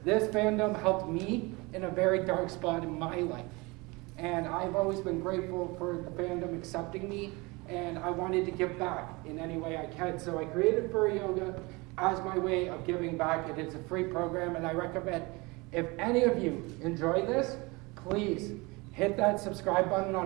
this fandom helped me in a very dark spot in my life, and I've always been grateful for the fandom accepting me, and I wanted to give back in any way I can. So I created Furry Yoga as my way of giving back. It is a free program, and I recommend if any of you enjoy this, please hit that subscribe button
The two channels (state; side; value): quieter; left; 25.3 dB